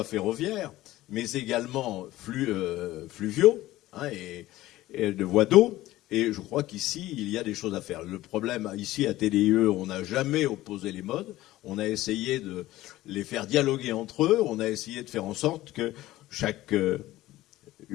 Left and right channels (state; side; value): quieter; right; 16.3 dB